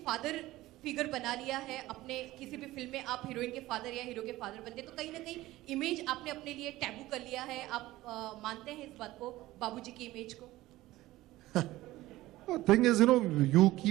फादर फिगर बना लिया है? अपने किसी भी फिल्म में आप हीरोइन के फादर या हीरो के फादर बनते तो कहीं ना कहीं इमेज आपने अपने लिए टैबू कर लिया है। आप मानते हैं इस बात को, बाबूजी की इमेज को? Thing is, you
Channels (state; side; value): quieter; left; 17.1 dB